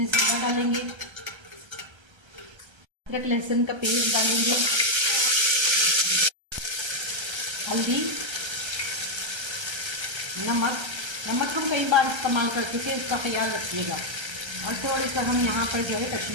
जीरा डालेंगे, अदरक लहसुन का पेस्ट डालेंगे, हल्दी, नमक हम कई बार इस्तेमाल कर चुके हैं, इसका ख्याल रखिएगा। और थोड़ी सा हम यहाँ पर जो है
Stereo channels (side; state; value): left; late; 1.3 ms